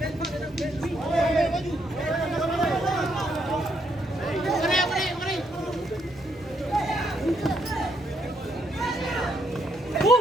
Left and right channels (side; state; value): both; normal; correlation 0.75